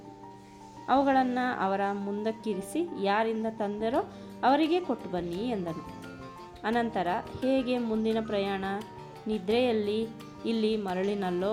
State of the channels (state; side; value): identical; both; correlation 1.00